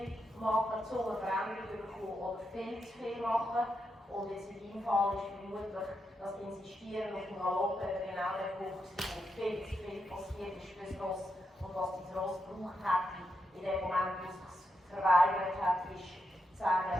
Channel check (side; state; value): both; normal; correlation 0.84